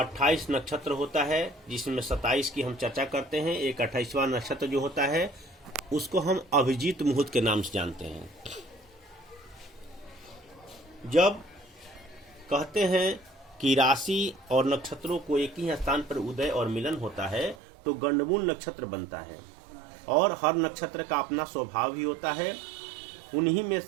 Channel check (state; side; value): drops out; left; at 17.6 s